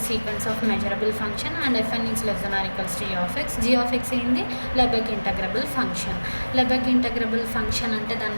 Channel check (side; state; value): both; inverted; correlation -1.00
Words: a sequence of measurable function and fn is less than or equals to g of x ఏంది Lebesgue integrable function. Lebesgue integrable function అంటే దాని